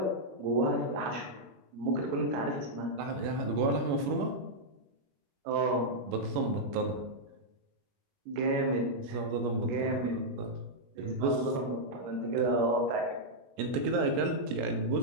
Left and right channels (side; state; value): left; late; 21 ms